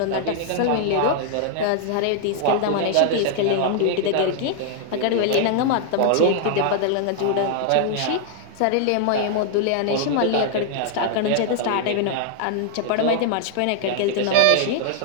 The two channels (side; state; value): both; different; correlation 0.00